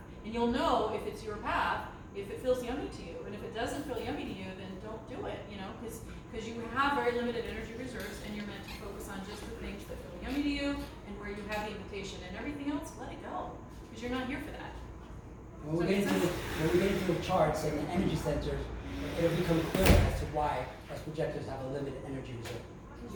and you'll know if it's your path if it feels yummy to you, and if it doesn't feel yummy to you, then don't do it. Because you have very limited energy reserves, and you're meant to focus on just the things that feel yummy to you and where you have the invitation, and everything else, let it go, because you're not here for that. When we get into the charts and the energy centers, it'll become clear as to why us projectors have a limited energy reserve.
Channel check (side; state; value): both; identical; correlation 1.00